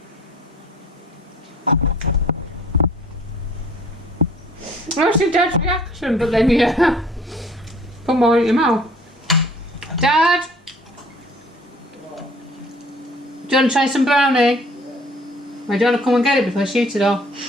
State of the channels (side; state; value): both; normal; correlation 0.54